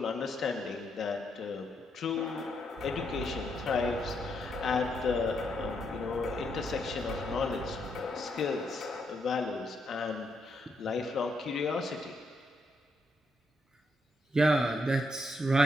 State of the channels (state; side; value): normal; both; correlation 0.78